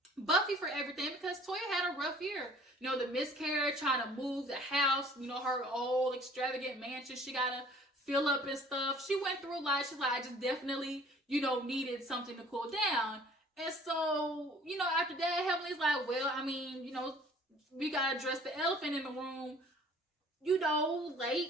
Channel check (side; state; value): both; normal; correlation 0.53